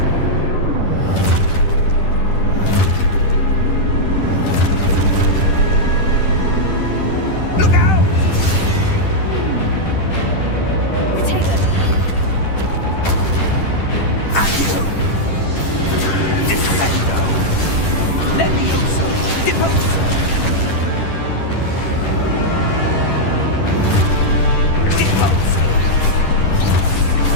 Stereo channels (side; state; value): right; late; 10 ms